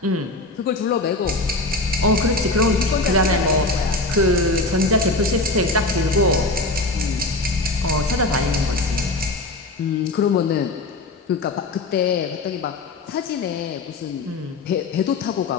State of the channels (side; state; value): right; quieter; 3.0 dB